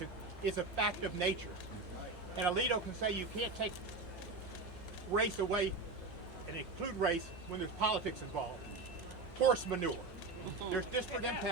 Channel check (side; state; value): left; quieter; 3.6 dB